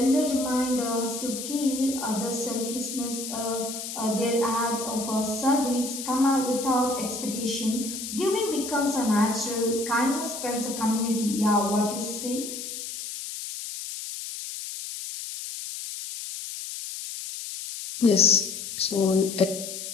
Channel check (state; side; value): noise; left; hiss, 7 dB below the sound